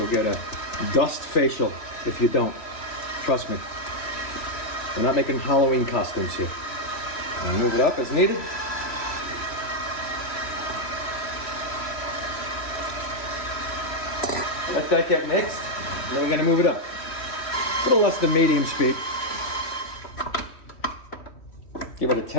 get a dust facial if you don't. Trust me. We're not making Halloween costumes here. I'll move it up as needed. Let that get mixed, and then we're gonna move it up. A little less than medium speed. Give it a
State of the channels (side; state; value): right; late; 3.1 ms